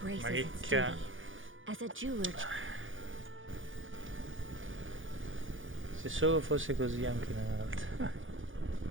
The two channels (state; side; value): late; left; 0.57 ms